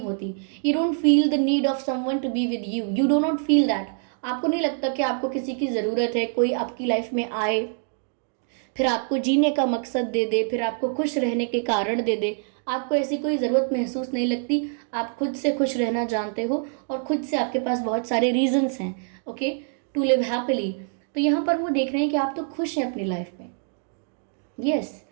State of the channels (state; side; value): silent; left; 56 dB below the other